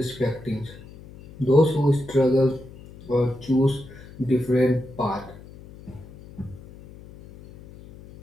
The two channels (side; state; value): left; noise; hum, 19 dB below the sound